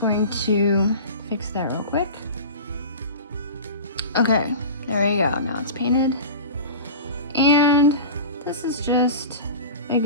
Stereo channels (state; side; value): inverted; both; correlation -0.33